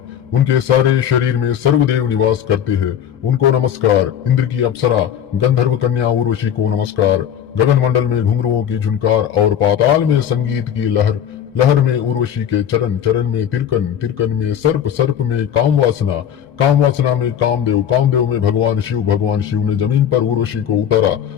उनके सारे शरीर में सर्वदेव निवास करते हैं। उनको नमस्कार। इंद्र की अप्सरा गंधर्व कन्या उर्वशी को नमस्कार। गगन मंडल में घुंघरुओं की झुनकार और पाताल में संगीत की लहर, लहर में उर्वशी के चरण, चरण में तिरकन, तिरकन में सर्प, सर्प में काम वासना, काम वासना में कामदेव, कामदेव में भगवान शिव, भगवान शिव ने जमीन पर उर्वशी को उतारा।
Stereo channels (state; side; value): quieter; right; 9.4 dB